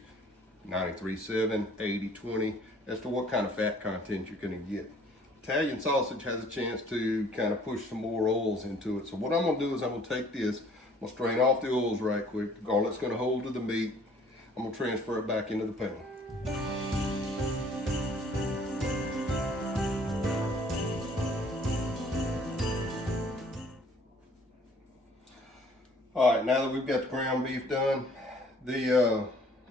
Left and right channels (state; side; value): normal; both; correlation 0.57